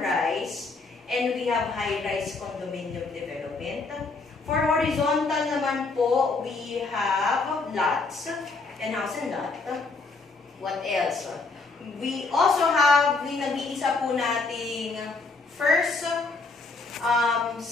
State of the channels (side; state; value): right; quieter; 3.8 dB